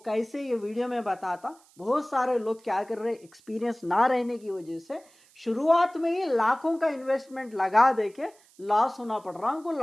ये वीडियो में बताता। बहुत सारे लोग क्या कर रहे, एक्सपीरियंस ना रहने की वजह से शुरुआत में ही लाखों का इन्वेस्टमेंट लगा देके लॉस होना पड़ रहा उनको,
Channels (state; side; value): noise; right; hiss, 29 dB below the sound